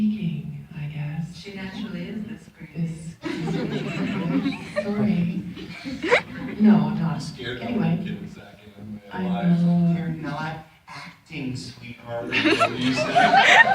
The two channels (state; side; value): identical; both; correlation 1.00